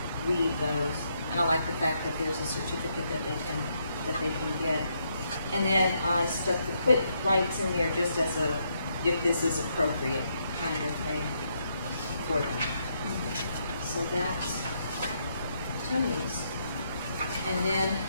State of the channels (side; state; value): both; inverted; correlation -0.76